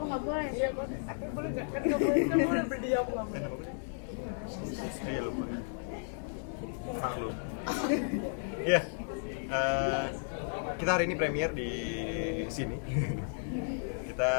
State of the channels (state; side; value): silent; right; digital silence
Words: nggak boleh. Iya, tapi boleh nggak? Kan nggak boleh, kan boleh berdiam nggak boleh. Iya lupa. Maklum. Iya. Kita hari ini premier di sini.